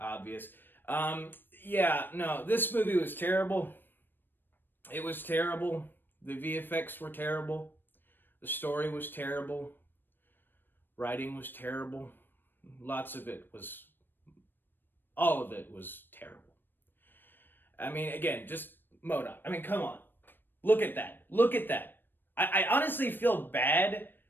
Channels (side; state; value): right; late; 0.095 ms